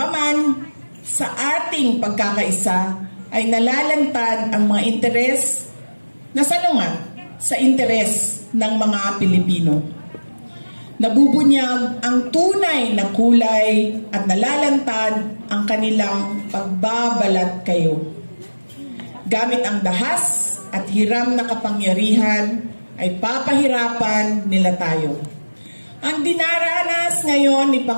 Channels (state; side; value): inverted; both; correlation -1.00